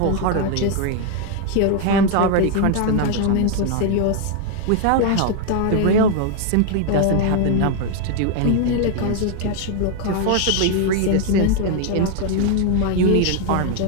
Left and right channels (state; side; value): different; both; correlation 0.01